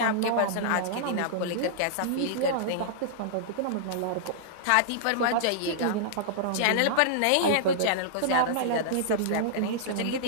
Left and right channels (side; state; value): both; different; correlation -0.02